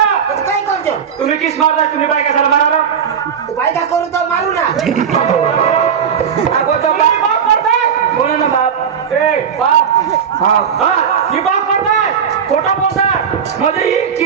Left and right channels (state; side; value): quieter; left; 7.4 dB